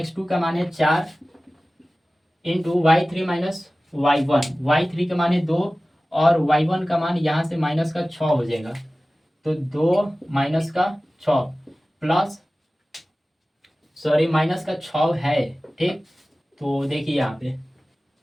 का मान है 4 इंटू y3 माइनस y3 का मान है 2 और y1 का मान यहाँ से माइनस का 6 हो जाएगा। तो 2 माइनस का 6 प्लस सॉरी माइनस का 6 है। ठीक, तो देखिए यहाँ पे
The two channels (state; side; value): normal; both; correlation 0.97